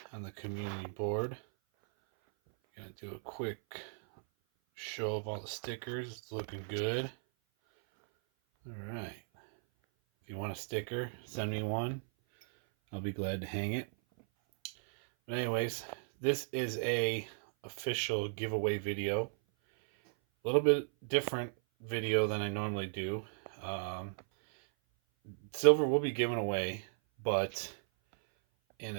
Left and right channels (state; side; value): silent; left; 54 dB below the other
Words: on the community board. Gonna do a quick show of all the stickers. It's looking good. All right. If you want a sticker, send me one. I'll be glad to hang it. But anyways, this is a official giveaway video. A little bit different video than I normally do. Silver will be given away, but in